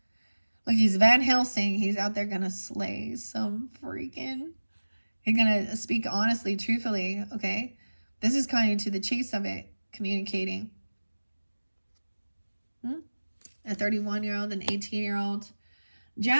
Look, he's Van Helsing. He's out there gonna slay some freaking. He's gonna speak honestly, truthfully. Okay, this is kind of to the chase of it, communicating. a 31-year-old, an 18-year-old.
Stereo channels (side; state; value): both; inverted; correlation -1.00